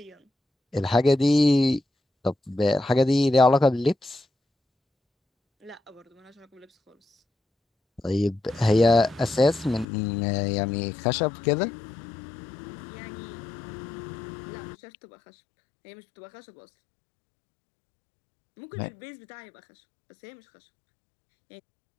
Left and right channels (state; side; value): drops out; right; at 9.9 s